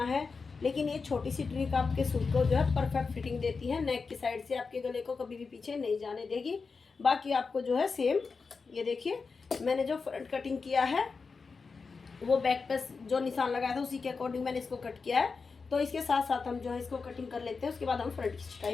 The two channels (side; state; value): right; quieter; 4.8 dB